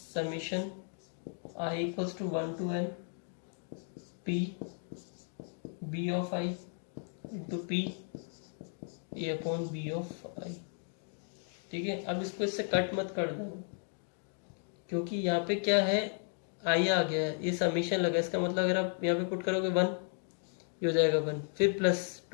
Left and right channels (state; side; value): silent; right; 55 dB below the other